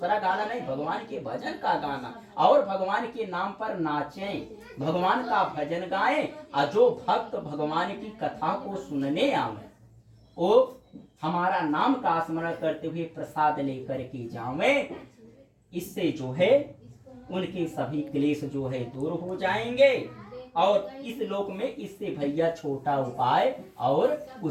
गाना नहीं, भगवान के भजन का गाना, और भगवान के नाम पर नाचें, भगवान का भजन गाएं। और जो भक्त भगवान की कथा को सुनने आवे, वो हमारा नाम का स्मरण करते हुए प्रसाद लेकर के जावे। इससे जो है उनके सभी क्लेश जो है दूर हो जाएंगे, और इस लोक में इससे भैया छोटा उपाय और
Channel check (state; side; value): identical; both; correlation 1.00